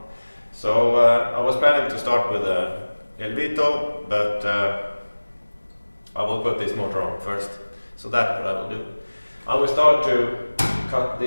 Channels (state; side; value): inverted; both; correlation -1.00